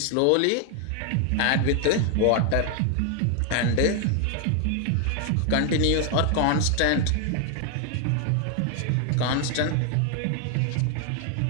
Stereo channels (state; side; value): different; both; correlation 0.00